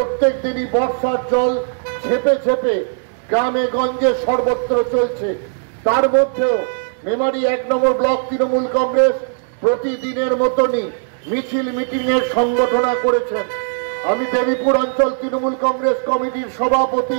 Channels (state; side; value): silent; left; digital silence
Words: দিনই বর্ষার জল ঝেপে ঝেপে গ্রামে গঞ্জে সর্বত্র চলছে। তার মধ্যেও মেমারি 1 নম্বর ব্লক তৃণমূল কংগ্রেস প্রতিদিনের মতনই মিছিল মিটিং এর সংগঠনা করেছেন। আমি দেবীপুর অঞ্চল তৃণমূল কংগ্রেস কমিটির